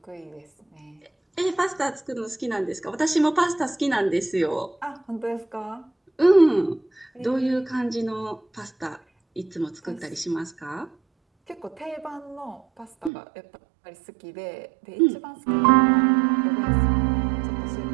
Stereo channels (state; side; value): drops out; left; at 13.1 s